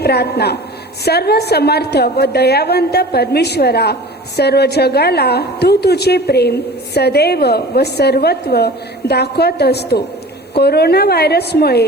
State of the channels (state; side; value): normal; both; correlation 0.40